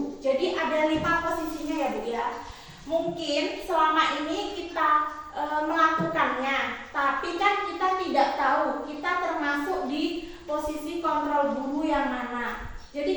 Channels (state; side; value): identical; both; correlation 1.00